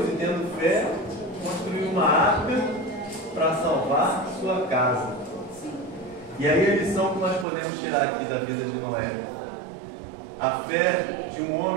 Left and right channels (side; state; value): left; drops out; at 7.5 s